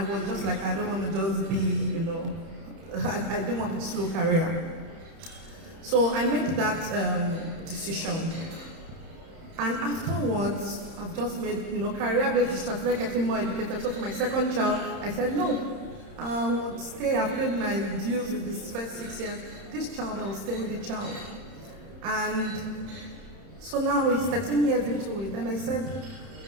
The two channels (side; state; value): left; late; 30 ms